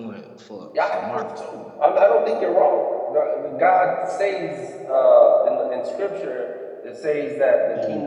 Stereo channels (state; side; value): identical; both; correlation 1.00